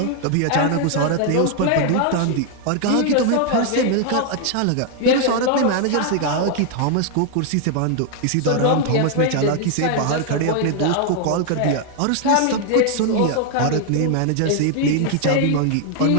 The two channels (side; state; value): both; different; correlation 0.00